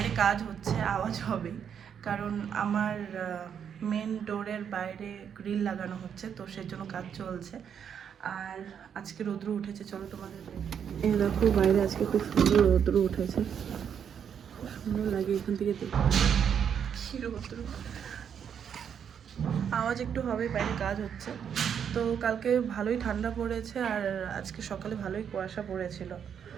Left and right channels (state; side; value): quieter; left; 8.0 dB